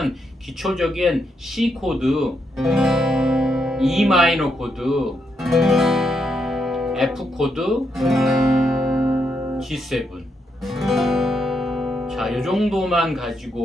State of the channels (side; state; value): both; normal; correlation 0.80